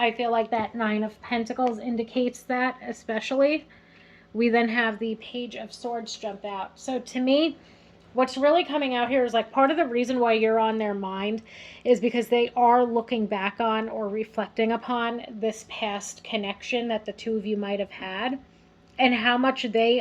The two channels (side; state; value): both; identical; correlation 1.00